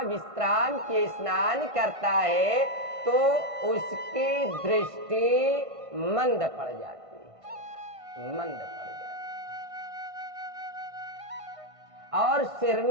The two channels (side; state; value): left; late; 1.5 ms